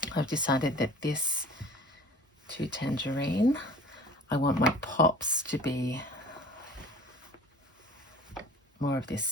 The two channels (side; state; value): both; normal; correlation 0.44